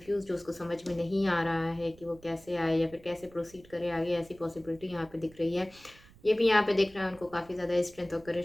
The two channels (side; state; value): right; noise; rumble, 25 dB below the sound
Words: जो उसको समझ में नहीं आ रहा है कि वो कैसे आए या फिर कैसे प्रोसीड करे आगे, ऐसी पॉसिबिलिटी यहाँ पे दिख रही है। ये भी यहाँ पे दिख रहा है उनको काफ़ी ज़्यादा स्ट्रेंथ और